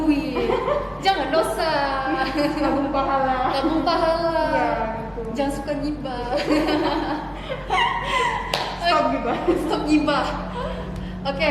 jangan dosa. nabung pahala. Nabung pahala. Iya gitu. Jangan suka gibah. Stop gitu. Stop gibah. Oke,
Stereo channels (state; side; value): identical; both; correlation 1.00